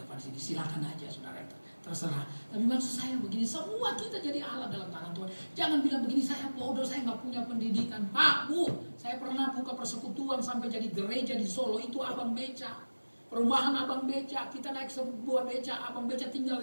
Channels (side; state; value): both; inverted; correlation -1.00